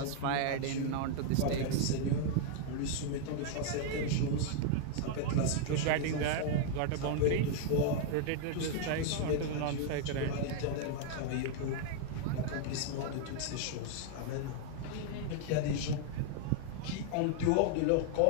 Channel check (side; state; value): both; different; correlation 0.00